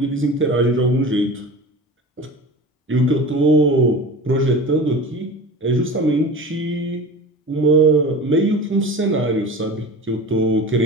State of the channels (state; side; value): normal; both; correlation 0.34